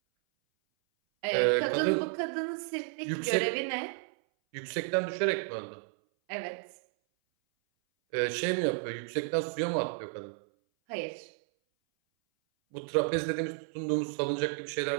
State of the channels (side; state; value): left; silent; 56 dB below the other